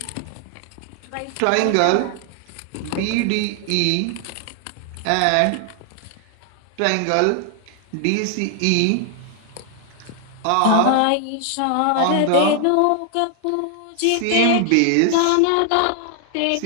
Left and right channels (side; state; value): both; different; correlation 0.00